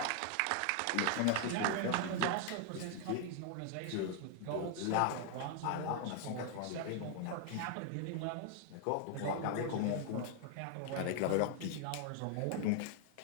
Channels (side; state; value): both; different; correlation 0.00